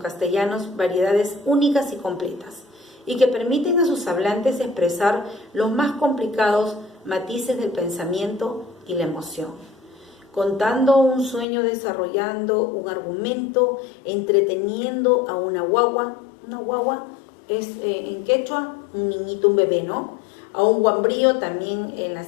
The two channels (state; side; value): drops out; right; at 11.5 s